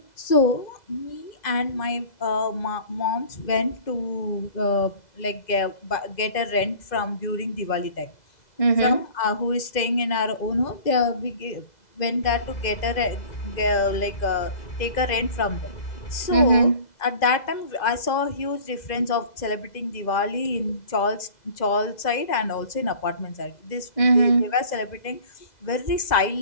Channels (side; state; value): right; late; 2.0 ms